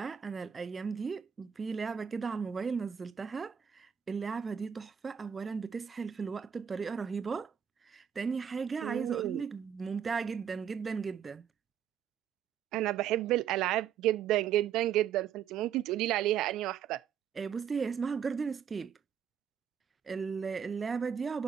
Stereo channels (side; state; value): left; quieter; 8.4 dB